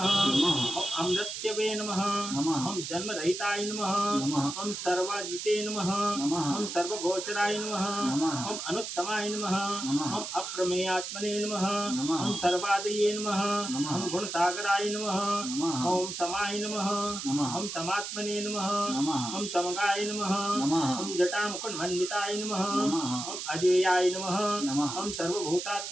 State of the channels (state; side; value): noise; right; hiss, 6 dB below the sound